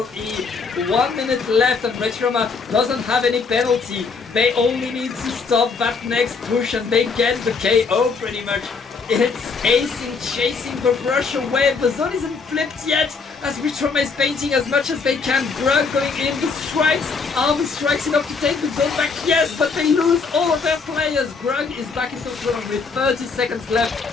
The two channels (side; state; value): right; quieter; 4.8 dB